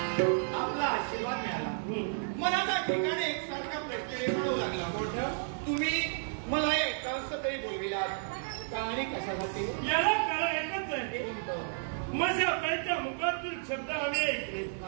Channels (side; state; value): left; silent; digital silence